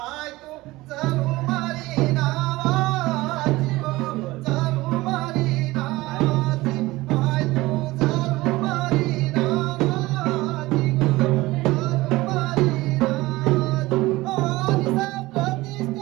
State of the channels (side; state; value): left; quieter; 19.5 dB